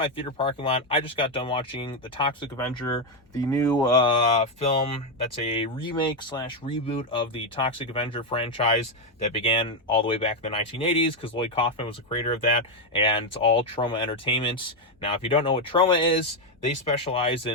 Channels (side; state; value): both; normal; correlation 0.05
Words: theater parking lot, I just got done watching The Toxic Avenger, the new film that's a remake slash reboot of the Toxic Avenger franchise that began all the way back in the 1980s, because Lloyd Kaufman was the creator of that, and it's all Troma Entertainment. Now, if you don't know what Troma is, they specialize